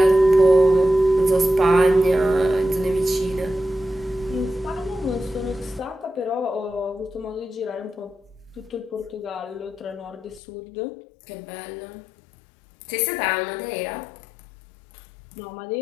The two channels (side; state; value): right; drops out; at 10.4 s